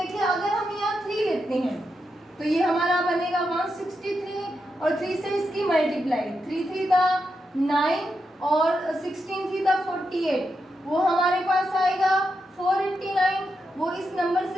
अगर हम यहाँ 3 लेते हैं तो ये हमारा बनेगा 163 और 3 से इसकी मल्टीप्लाई, 3 3 दा 9 और 16 3 दा 48, वो हमारे पास आएगा 489। वो इस नंबर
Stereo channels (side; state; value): both; normal; correlation 0.85